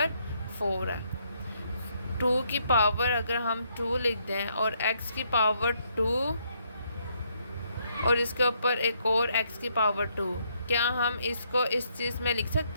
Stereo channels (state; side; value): inverted; both; correlation -0.73